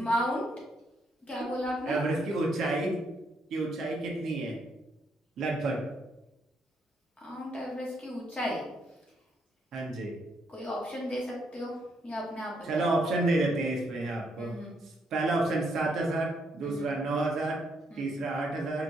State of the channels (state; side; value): normal; both; correlation 0.75